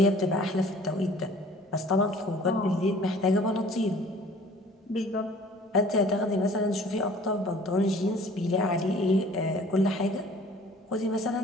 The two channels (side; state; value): both; normal; correlation 0.51